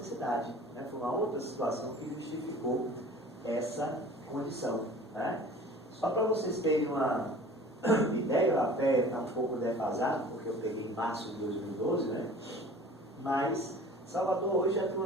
né? Foi uma outra situação que justificou essa condição, né? Só para vocês terem uma ideia, até está um pouco defasado, porque eu peguei em março de 2012, né? Mas Salvador hoje já tem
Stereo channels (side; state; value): both; normal; correlation 0.44